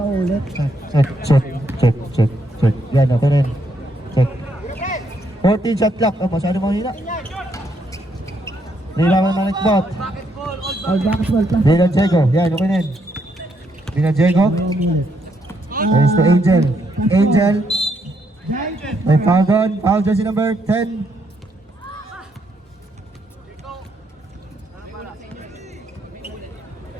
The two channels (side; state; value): both; normal; correlation 0.75